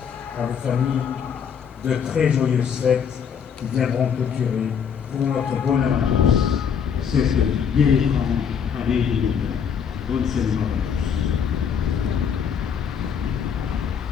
à vos familles, de très joyeuses fêtes qui viendront clôturer pour notre bonheur à tous. C'est ce bien écran avec les bonne célébration.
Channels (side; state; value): right; quieter; 7.3 dB